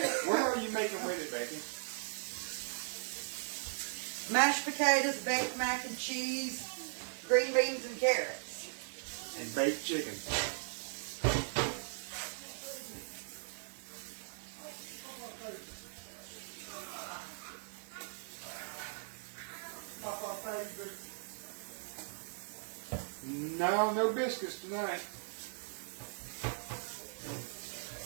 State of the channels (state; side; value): silent; left; digital silence